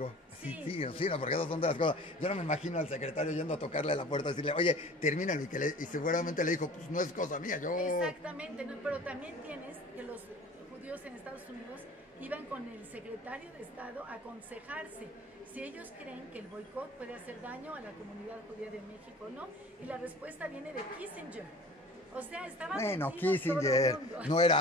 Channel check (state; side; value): normal; both; correlation 0.43